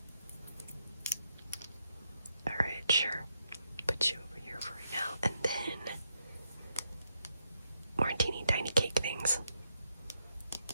Alright, sure. Put you over here for right now. And then more teeny tiny cake things.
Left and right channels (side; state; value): both; inverted; correlation -0.80